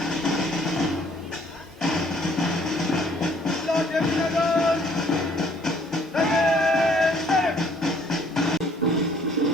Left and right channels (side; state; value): both; normal; correlation 0.61